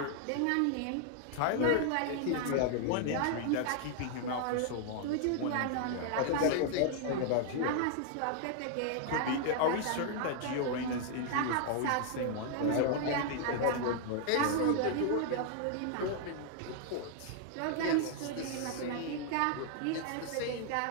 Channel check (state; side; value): different; both; correlation 0.00